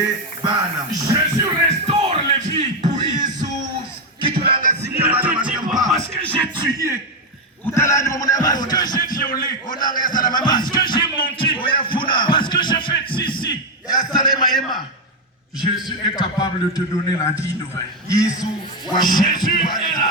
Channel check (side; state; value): both; normal; correlation 0.05